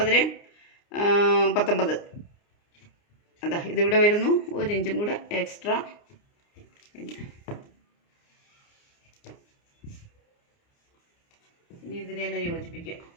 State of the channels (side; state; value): right; late; 29 ms